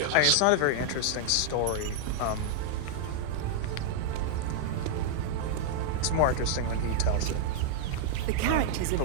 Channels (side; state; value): both; different; correlation -0.01